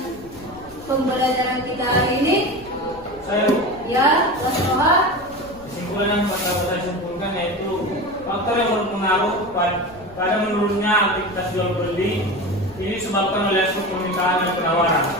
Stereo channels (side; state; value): left; noise; rumble, 22 dB below the sound